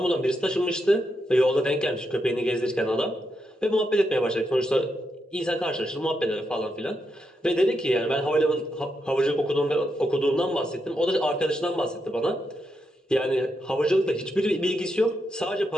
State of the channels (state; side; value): normal; both; correlation 0.83